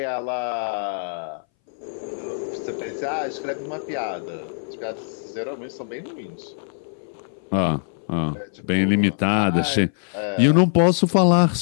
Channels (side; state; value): right; silent; 61 dB below the other